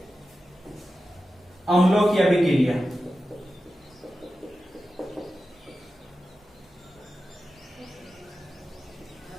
अम्लों की अभिक्रिया।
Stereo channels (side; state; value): both; normal; correlation 0.92